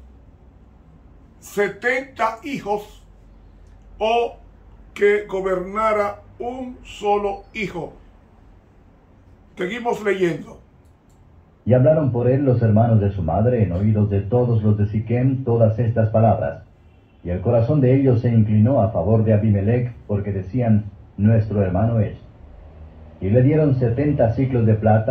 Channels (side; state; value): both; identical; correlation 1.00